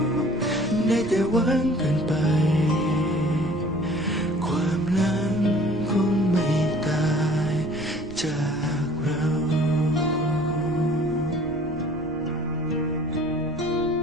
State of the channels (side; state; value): left; noise; rumble, 17 dB below the sound